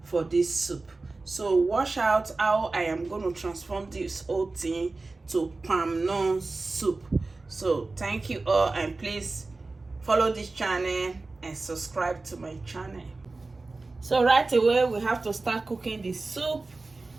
for this soup. So watch out how I am going to transform this whole thing to palm nut soup. So thank you all, and please follow this channel and subscribe to my channel. So right away we have to start cooking the soup,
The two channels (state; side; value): quieter; left; 3.5 dB